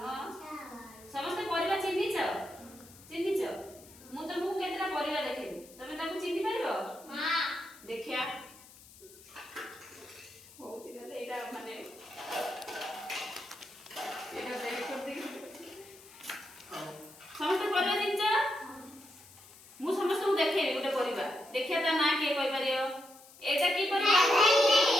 ସମସ୍ତେ ପରିବା ଚିହ୍ନିଛ? ଚିହ୍ନିଛ? ମୁଁ ତମକୁ କେତେଟା ପରିବା ଦେଖେଇବି, ତମେ ତାକୁ ଚିହ୍ନି ପାରିବ? ଦେଖିଆ ହଉଛି ତାହେଲେ ଏଇଟା ମାନେ ଏଇଟା ବେକ୍ କରିଦେଇକି ସମସ୍ତେ ପରିବା ଚିହ୍ନିଛ? ମୁଁ ସମସ୍ତଙ୍କୁ ଦେଖେଇବି ଗୋଟେ ପରିବା, ଦେଖିଆ ତା ନାଁ କିଏ କହିପାରିବ? ଏଇଟା କି ପରିବା?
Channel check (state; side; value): noise; left; hiss, 21 dB below the sound